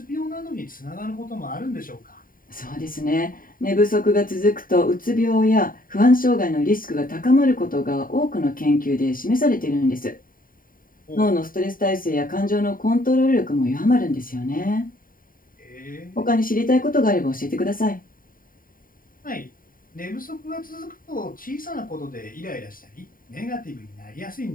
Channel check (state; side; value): late; right; 0.41 ms